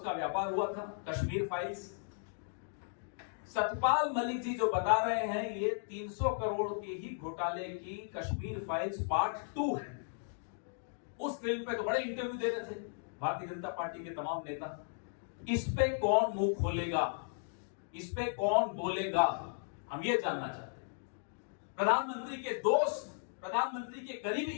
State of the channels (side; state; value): right; silent; digital silence